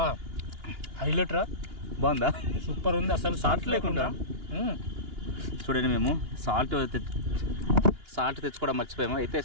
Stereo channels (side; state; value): left; late; 2.9 ms